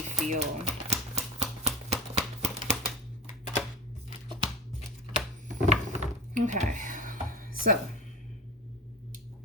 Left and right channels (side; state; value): both; normal; correlation 0.34